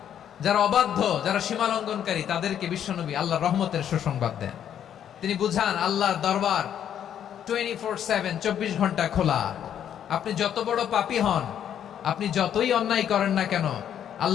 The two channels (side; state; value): right; quieter; 9.6 dB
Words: যারা অবাধ্য, যারা সীমালঙ্ঘনকারী, তাদেরকে বিশ্বনবী আল্লাহর রহমতের সুসংবাদ দেন। তিনি বুঝান আল্লাহর দরবার 24/7, 24 ঘন্টা খোলা। আপনি যত বড় পাপী হন, আপনি যতই অন্যায় করেন না কেন,